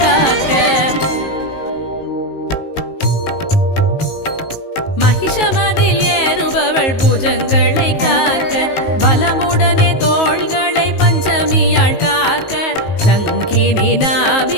காக்க மகிஷமதில் ஏறுபவள் பூஜங்களை காக்க பலமுடனே தோள்களை பஞ்சமியாள் காக்க சங்கினி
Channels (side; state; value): right; late; 19 ms